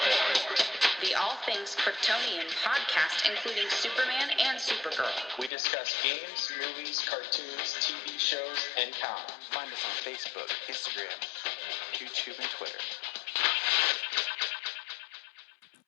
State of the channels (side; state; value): right; drops out; at 5.5 s